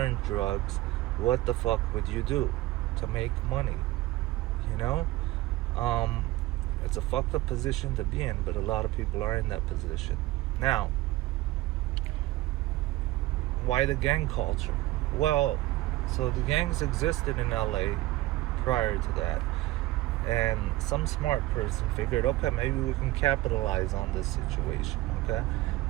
drugs, what the fuck would you do to make money? It's a fucked up position to be in, but a lot of people are in that position. Now, why the gang culture? Well, So the gangs existed in LA prior to that. And some smart person figured, okay, maybe we can capitalize on this situation, okay?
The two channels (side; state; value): left; quieter; 17.4 dB